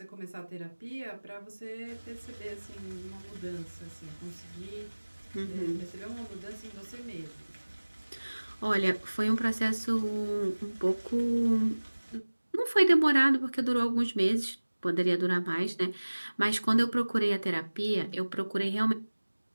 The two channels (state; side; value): inverted; both; correlation -1.00